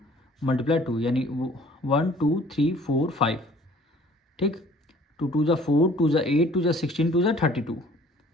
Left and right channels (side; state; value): both; normal; correlation 0.53